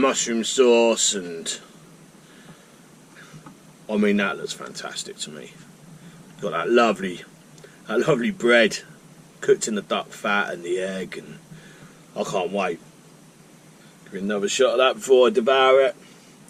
sauce, and I mean that looks fantastic to me. Got that lovely bread cooked in the duck fat and the egg, and I can't wait. Give me another shot of that before I devour it.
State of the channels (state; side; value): identical; both; correlation 1.00